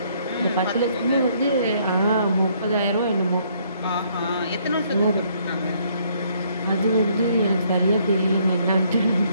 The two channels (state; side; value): inverted; both; correlation -0.67